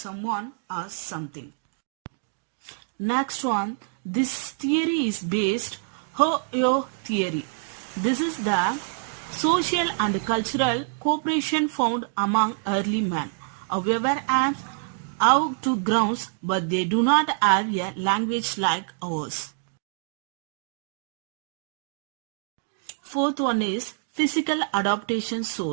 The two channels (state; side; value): silent; left; digital silence